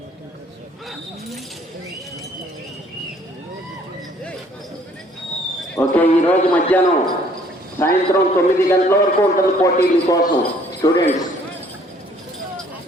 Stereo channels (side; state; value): both; normal; correlation 0.60